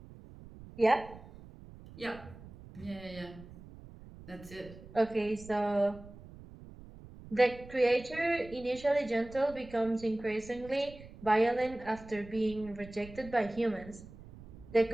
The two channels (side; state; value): right; noise; rumble, 17 dB below the sound